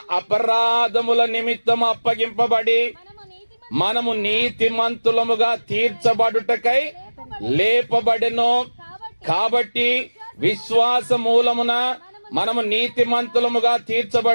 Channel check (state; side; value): inverted; both; correlation -1.00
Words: అపరాధముల నిమిత్తం అప్పగింపబడి మనము నీతిమంతులముగా తీర్చబడుటకై లేపబడెను. కాబట్టి విశ్వాస మూలమున మనము నీతిమంతులముగా